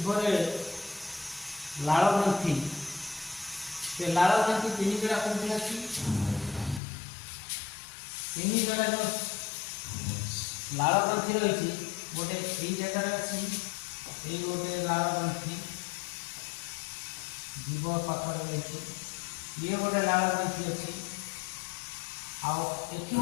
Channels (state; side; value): drops out; right; at 6.8 s